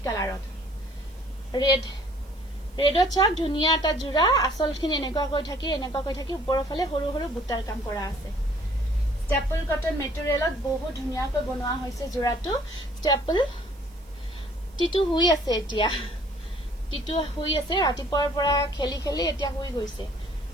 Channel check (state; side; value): noise; right; hiss, 29 dB below the sound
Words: কালাৰত ৰেডত চাওক ধুনিয়া এটা জোৰা আসলখিনি এনেকুৱা কৈ থাকি ওপৰৰ ফালে সৰু সৰু বুটাৰ কাম কৰা আছে স্টেপল কটন মেটেৰিয়েলত বহুত ধুনিয়াকৈ বনোৱা হৈছে জোৰাটো স্টেপল টিটু হুই আছে এতিয়া টিটু হুই আছে ৰাতিপুৱাৰ পৰা খেলি খেলি এতিয়া হুই গৈছে